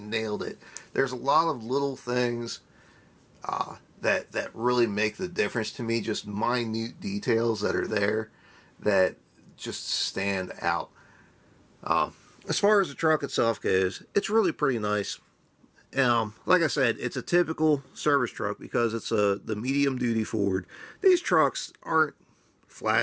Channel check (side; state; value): both; identical; correlation 1.00